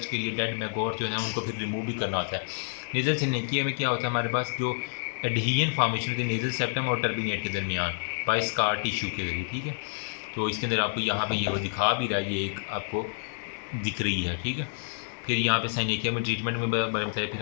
के लिए डेड मैगोट जो है ना उनको फिर रिमूव भी करना होता है। नेज़ल सिनेकिया में क्या होता है हमारे पास, जो एडहियन फॉर्मेशन होती है नेज़ल सेप्टम और टर्बिनेट के दरमियान बाय स्कार टिश्यू के ज़रिए, ठीक है। तो इसके अंदर आपको यहाँ पे ये वो दिखा भी रहा है, ये एक आपको दिख रही है, ठीक है। फिर यहाँ पे साइनेकिया में ट्रीटमेंट में बारे में बताया। फिर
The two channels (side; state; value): right; silent; 59 dB below the other